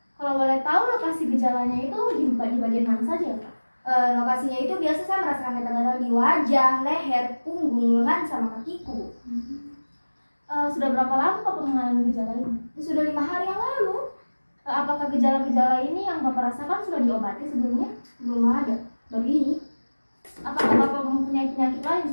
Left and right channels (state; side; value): inverted; both; correlation -1.00